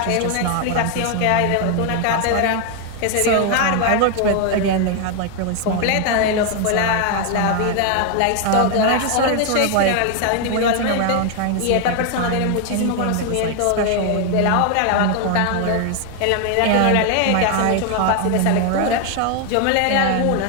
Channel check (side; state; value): both; different; correlation 0.00